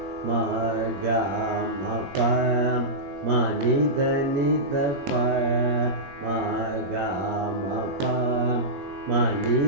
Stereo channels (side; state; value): left; late; 21 ms